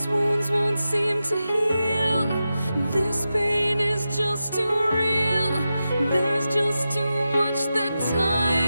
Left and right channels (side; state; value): both; inverted; correlation -0.91